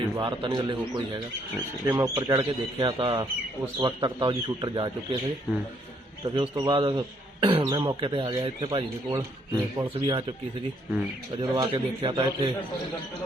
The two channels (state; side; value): normal; both; correlation 0.69